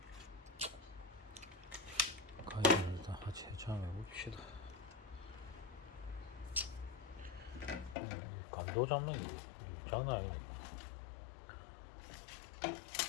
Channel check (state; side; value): drops out; right; at 8.0 s